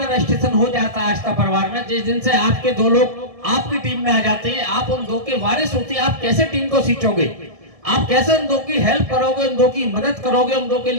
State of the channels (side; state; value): left; late; 1.6 ms